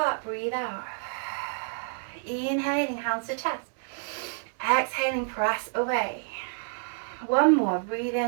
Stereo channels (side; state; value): left; silent; 59 dB below the other